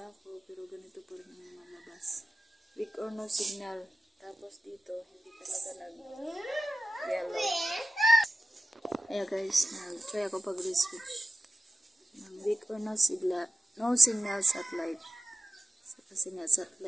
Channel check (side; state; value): both; normal; correlation 0.94